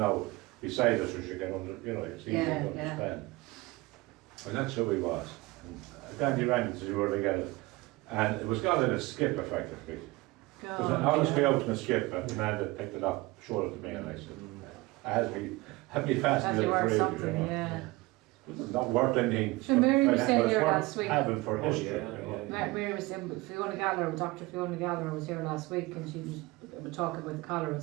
beside us, so you can it's easy Yeah, to understand. And that's who he was. And Danny rang to see where they get it. And it was gone in a skip, effectively. It was honestly out in a skip, and the man that picked it up showed it to me, and I said, it had me That's fascinated worth really, something, yeah. It's not worth anything. So Mary was but saying it's here worth last week. having for Oh, history, yeah, you know. yeah. Mary was saying, Dr. Fiona Gallagher was here last week, and she was talking about the Cranmore and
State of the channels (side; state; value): left; quieter; 21.8 dB